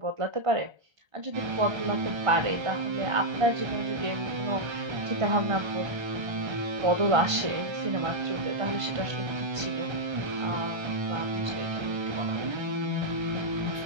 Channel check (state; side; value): late; left; 1.3 ms